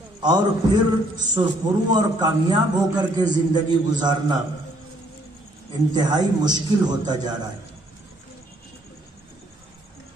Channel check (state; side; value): normal; both; correlation 0.66